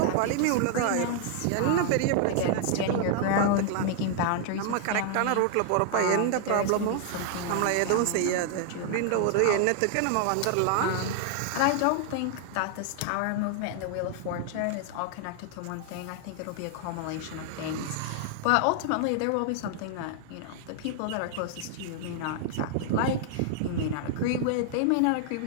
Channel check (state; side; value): different; both; correlation 0.00